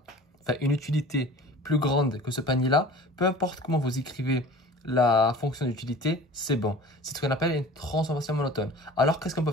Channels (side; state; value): both; normal; correlation 0.42